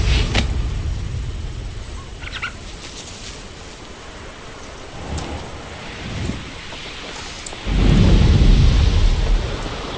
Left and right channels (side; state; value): both; identical; correlation 1.00